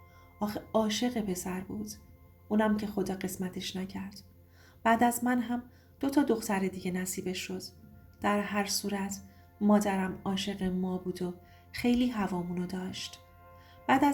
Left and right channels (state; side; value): identical; both; correlation 1.00